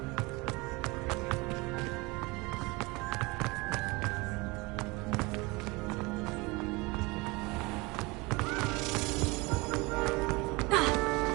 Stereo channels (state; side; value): quieter; left; 24.9 dB